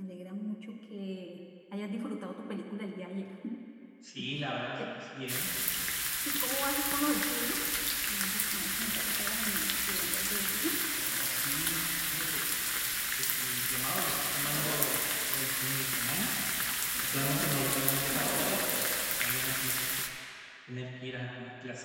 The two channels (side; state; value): both; identical; correlation 1.00